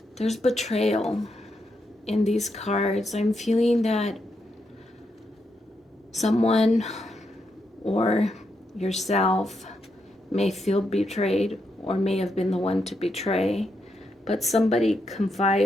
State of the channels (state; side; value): normal; both; correlation 0.82